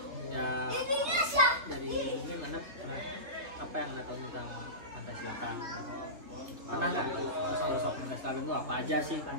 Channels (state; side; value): late; left; 3.3 ms